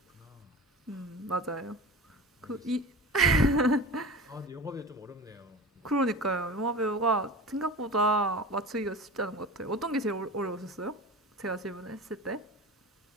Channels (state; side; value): normal; both; correlation 0.32